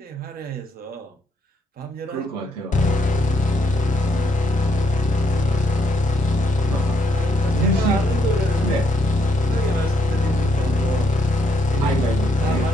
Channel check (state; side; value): normal; both; correlation 0.73